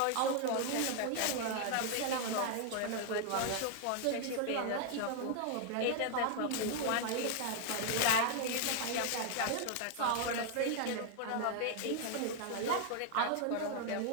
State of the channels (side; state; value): both; different; correlation 0.00